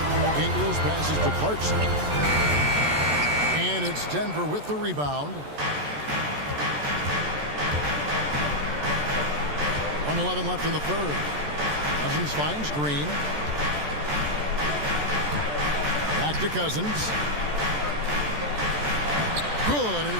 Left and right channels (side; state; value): left; late; 14 ms